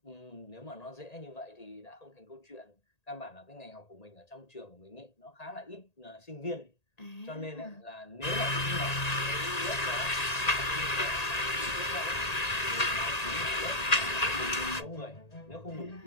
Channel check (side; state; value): right; late; 1.8 ms